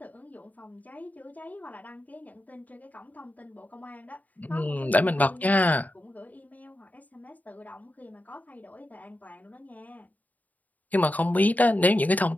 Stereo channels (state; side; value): late; right; 0.077 ms